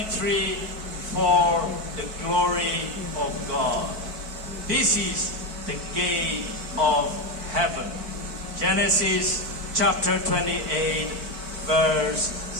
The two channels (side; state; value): left; late; 4.4 ms